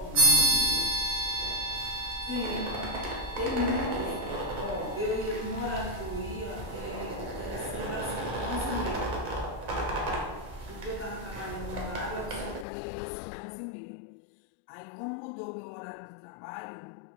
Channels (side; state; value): right; drops out; at 12.7 s